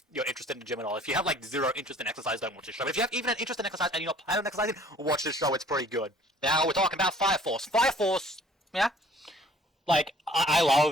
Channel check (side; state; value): both; normal; correlation 0.54